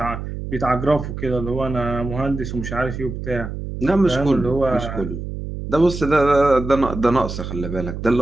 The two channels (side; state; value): right; noise; hum, 7 dB below the sound